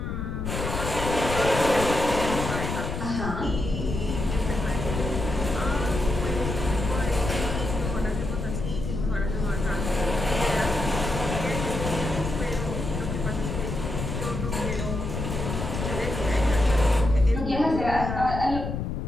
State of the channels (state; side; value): noise; left; rumble, 4 dB below the sound